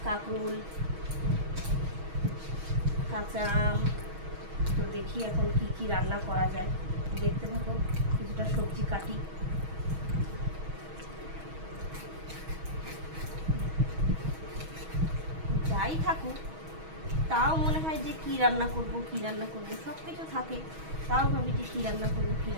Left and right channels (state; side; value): late; left; 6.2 ms